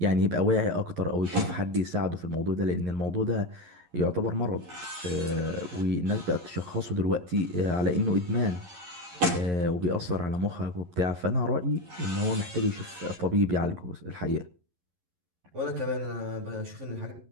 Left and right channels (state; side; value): late; left; 11 ms